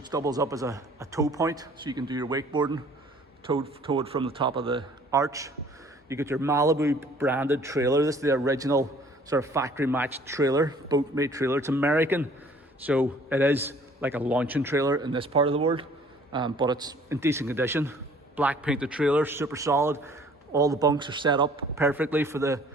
doubles up as a tow point, so you can do your wakeboarding towed from the top of the arch. You get your Malibu branded trailer. This is the original sort of factory matched trailer, boat made trailer. It's American, so it is like a launching trailer in this part of the world, but it's in decent condition. Black painted trailer, super solid. All the bunks are set up perfectly to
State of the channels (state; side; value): normal; both; correlation 0.55